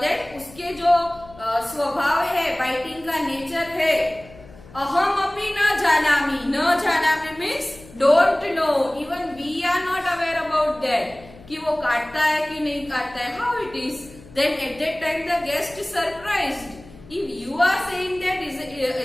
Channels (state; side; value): noise; left; hum, 21 dB below the sound